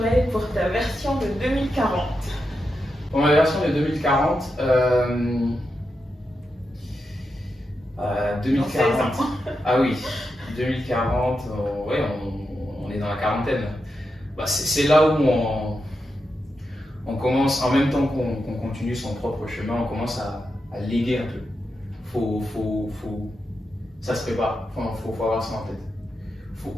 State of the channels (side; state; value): both; normal; correlation 0.87